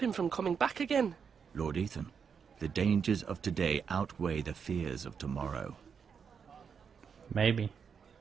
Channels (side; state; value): left; quieter; 6.6 dB